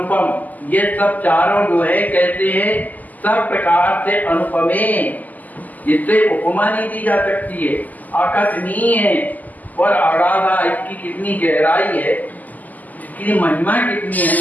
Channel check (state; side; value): late; right; 0.081 ms